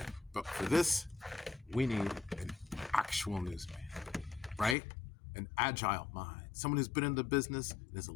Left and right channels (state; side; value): drops out; right; at 4.8 s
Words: But for this, we need an actual newsman, right? An agile mind, someone who's been in the business and is a